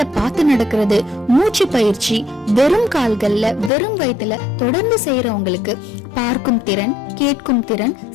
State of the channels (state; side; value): drops out; right; at 3.7 s